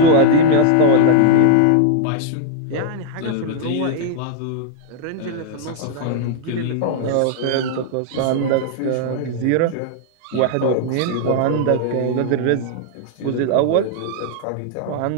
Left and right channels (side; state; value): both; different; correlation 0.00